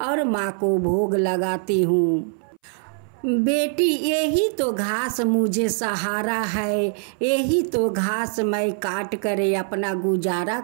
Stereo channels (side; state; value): left; silent; 62 dB below the other